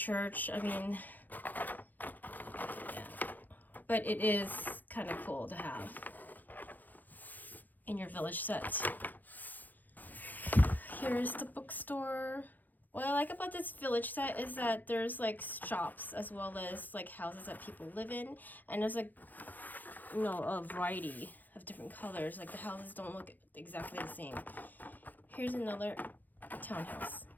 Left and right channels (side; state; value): right; late; 0.084 ms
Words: I mean, yeah. But it is kind of cool to have in your village set. Here's the bookstore. What I like about this village set is that there's like shops as well as like houses that people live in, and there's like, you know, a variety of different colors. Like the houses don't look exactly the same. Here's another townhouse.